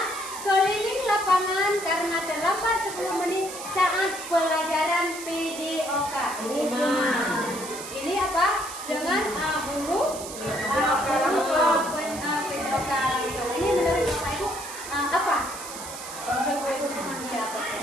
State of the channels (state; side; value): noise; right; hiss, 10 dB below the sound